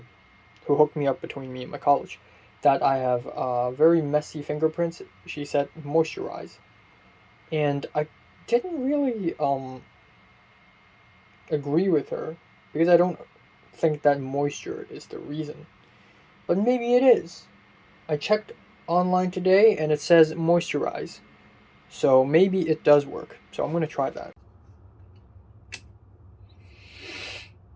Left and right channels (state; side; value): identical; both; correlation 1.00